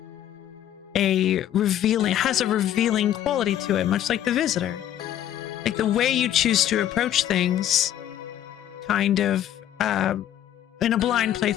has a revealing quality to it, much like The Visitor. Like the way you choose to approach things, kind of, in a blind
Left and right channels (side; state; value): right; quieter; 11.5 dB